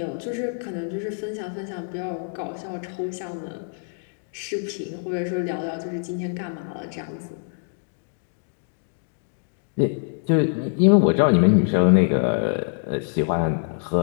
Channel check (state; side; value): silent; right; digital silence